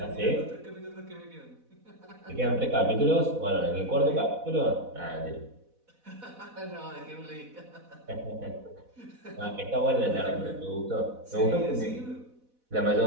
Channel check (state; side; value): late; left; 4.1 ms